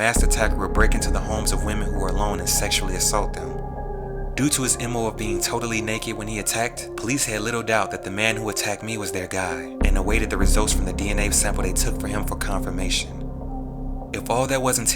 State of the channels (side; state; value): both; identical; correlation 1.00